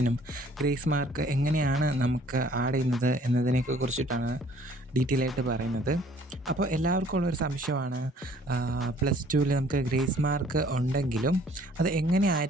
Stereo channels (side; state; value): both; normal; correlation 0.57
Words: ഗ്രേസ് മാർക്ക് എങ്ങനെയാണ് നമുക്ക് ആഡ് ചെയ്യുന്നത് എന്നതിനെയൊക്കെ കുറിച്ചിട്ടാണ് ഡീറ്റെയിൽ ആയിട്ട് പറയുന്നത്. അപ്പോൾ എല്ലാവർക്കും ഉള്ളൊരു സംശയമാണ്, +2വിൽ നമുക്ക് ഗ്രേസ് മാർക്ക് ഉണ്ടെങ്കിലും അത്